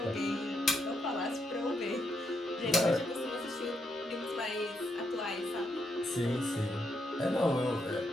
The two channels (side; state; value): both; normal; correlation 0.79